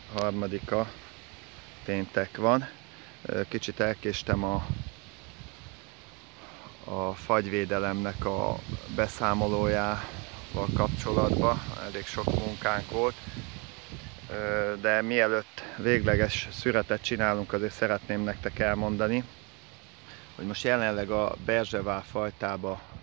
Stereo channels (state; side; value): quieter; left; 30.8 dB